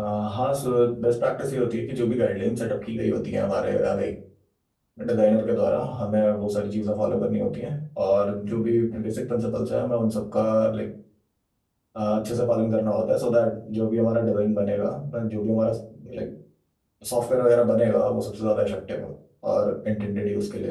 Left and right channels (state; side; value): identical; both; correlation 1.00